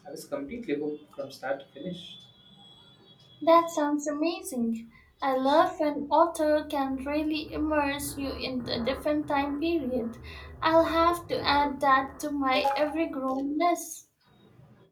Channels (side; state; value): both; identical; correlation 1.00